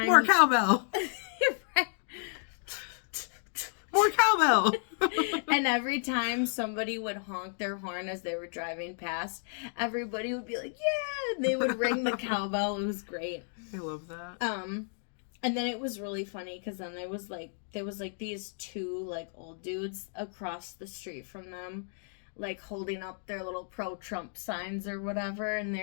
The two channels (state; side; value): silent; right; digital silence